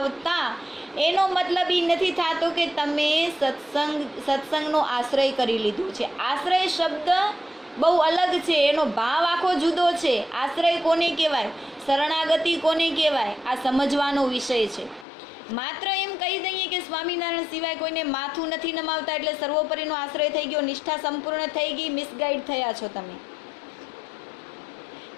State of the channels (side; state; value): right; drops out; at 15.1 s